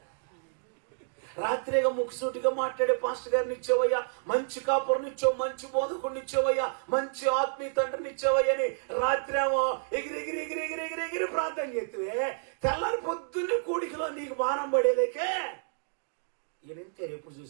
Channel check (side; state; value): left; silent; digital silence